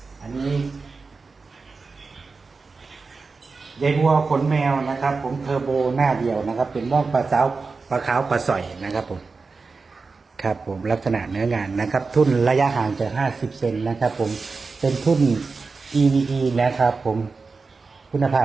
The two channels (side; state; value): left; quieter; 4.3 dB